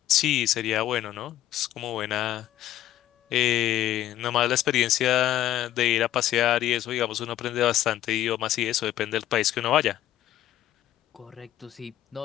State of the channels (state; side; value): quieter; right; 13.0 dB